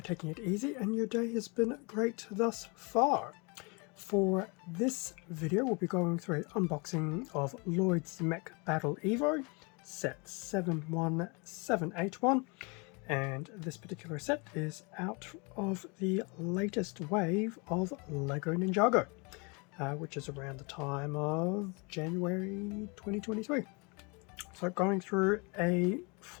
taking it easy and your day has been great thus far. For this video we'll be going through an unboxing of Lloyd's Mech Battle EVO set 71781, and this particular set is out of the latest wave of Lego Ninjago, which is around the time of January 2023. So going through a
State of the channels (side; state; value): right; quieter; 30.5 dB